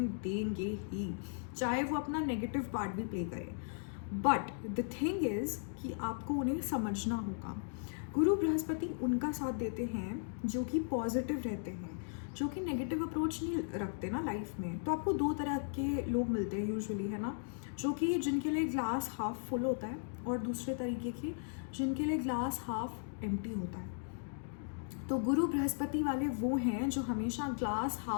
देंगे ही, चाहे वो अपना नेगेटिव पार्ट भी प्ले करे। बट द थिंग इज़ कि आपको उन्हें समझना होगा। गुरु बृहस्पति उनका साथ देते हैं जो कि पॉजिटिव रहते हैं, जो कि नेगेटिव अप्रोच नहीं रखते ना लाइफ में। तो आपको दो तरह के लोग मिलते हैं यूजुअली, है ना, जो कि जिनके लिए ग्लास हाफ फुल होता है और दूसरे तरीके के जिनके लिए ग्लास हाफ एम्प्टी होता है। तो गुरु बृहस्पति वाले वो हैं जो हमेशा ग्लास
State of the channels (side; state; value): right; silent; digital silence